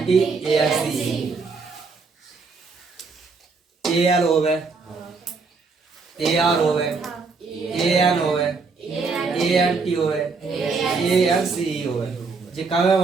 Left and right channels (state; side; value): quieter; left; 4.5 dB